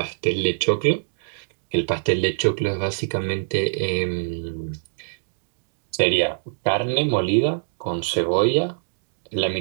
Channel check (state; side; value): silent; left; digital silence